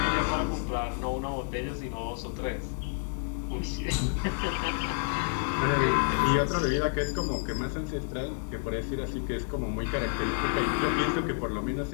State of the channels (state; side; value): silent; right; digital silence